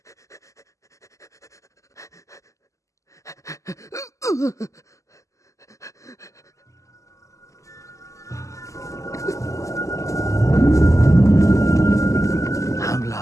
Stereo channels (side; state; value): right; late; 0.16 ms